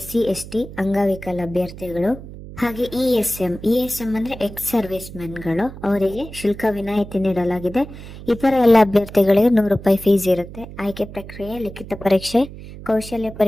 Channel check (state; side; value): noise; right; hum, 14 dB below the sound